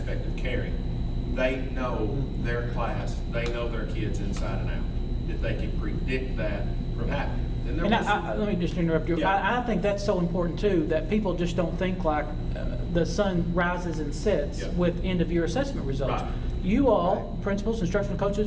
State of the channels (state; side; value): identical; both; correlation 1.00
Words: of caring, they know their class, they know their kids inside and out, that they can predict that from happening. And let me just interrupt you. Yeah. I think that's so important too, that people just don't think like the sun rises and sets Yeah. with end of year assessment results. Right. You all, principals, instructional